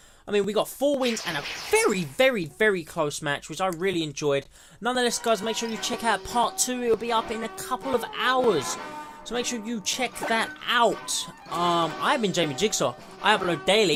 I mean, we got 4 wins and a very, very, very close match, which I really enjoyed. Nonetheless, guys, make sure you check out part 2. It'll be up in a couple of hours. So make sure you check that out. I've been Jamie Jigsaw. I upload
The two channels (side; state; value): both; identical; correlation 1.00